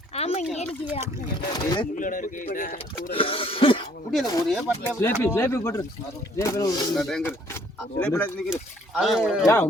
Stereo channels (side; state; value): both; normal; correlation 0.62